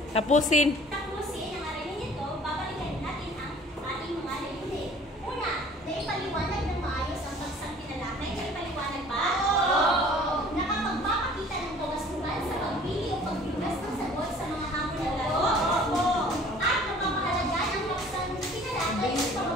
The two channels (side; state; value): both; normal; correlation 0.50